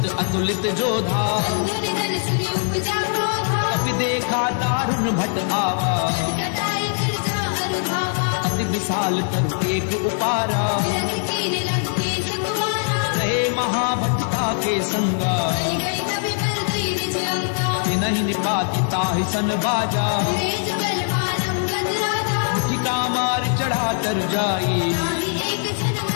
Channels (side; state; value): right; silent; 64 dB below the other